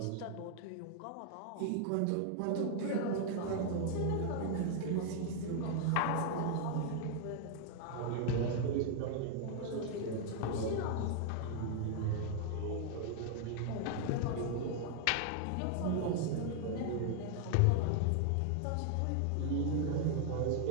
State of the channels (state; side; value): different; both; correlation 0.00